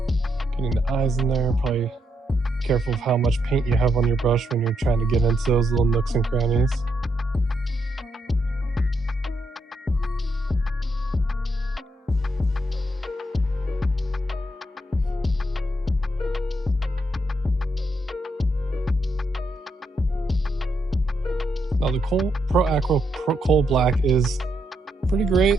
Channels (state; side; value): normal; both; correlation 0.79